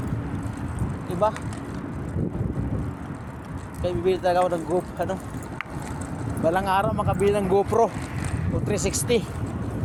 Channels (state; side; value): identical; both; correlation 1.00